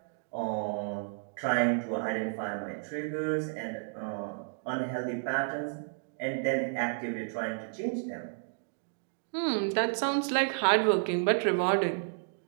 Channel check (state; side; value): silent; left; digital silence